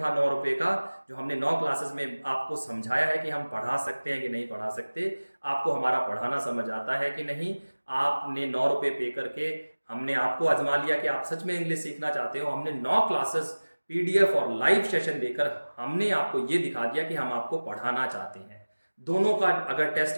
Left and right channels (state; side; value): inverted; both; correlation -1.00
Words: 9 रुपए का, जो हमने 9 क्लासेस में आपको समझाया है कि हम पढ़ा सकते हैं कि नहीं पढ़ा सकते, आपको हमारा पढ़ाना समझ आता है कि नहीं। आपने 9 रुपए पे करके हमने आपको आजमा लिया कि आप सच में इंग्लिश सीखना चाहते हो। हमने 9 क्लासेस पीडीएफ और लाइव सेशन देकर हमने आपको ये दिखा दिया कि हम आपको पढ़ाना चाहते हैं। दोनों का अगर टेस्ट